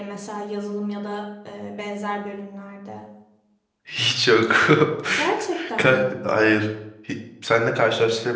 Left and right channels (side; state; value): both; identical; correlation 1.00